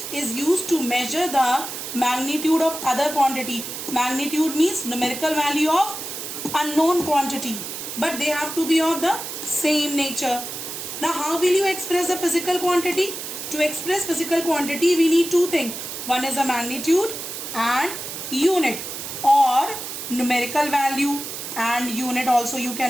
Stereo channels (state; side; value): noise; right; hiss, 7 dB below the sound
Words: is used to measure the magnitude of other quantity. Magnitude means numerical value of unknown quantity, but they have to be of the same nature. Now how will you express the physical quantity? To express physical quantity we need two things. One is a magnitude and unit, or numerical value and unit also you